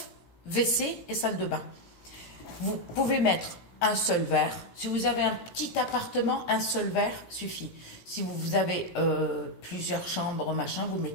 WC et salle de bain. Vous pouvez mettre un seul verre. Si vous avez un petit appartement, un seul verre suffit. Si vous avez plusieurs chambres, machin, vous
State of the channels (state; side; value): late; right; 17 ms